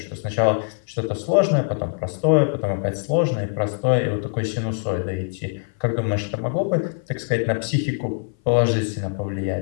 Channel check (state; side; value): silent; right; 58 dB below the other